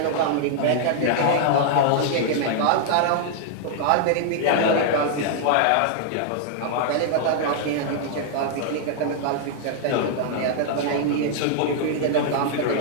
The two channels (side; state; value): both; different; correlation 0.00